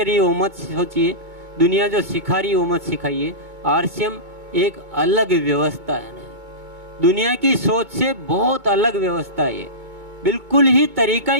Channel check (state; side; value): late; left; 2.2 ms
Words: है वो मत सोचिए, दुनिया जो सिखा रही है वो मत सिखाइए। आरसीएम एक अलग व्यवस्था है ना, दुनिया की सोच से बहुत अलग व्यवस्था है, बिल्कुल ही तरीका